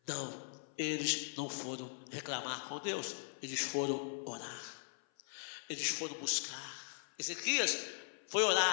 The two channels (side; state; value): right; silent; 51 dB below the other